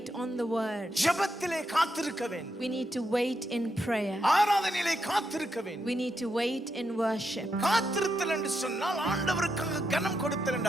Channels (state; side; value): normal; both; correlation 0.83